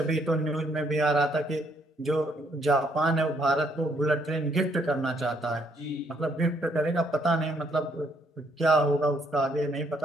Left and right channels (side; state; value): both; normal; correlation 0.70